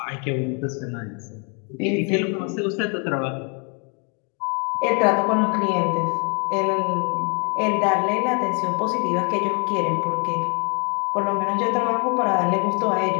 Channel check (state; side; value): quieter; right; 37.0 dB